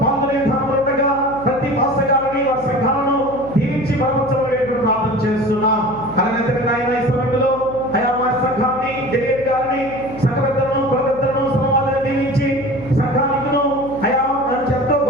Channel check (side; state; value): left; noise; hum, 16 dB below the sound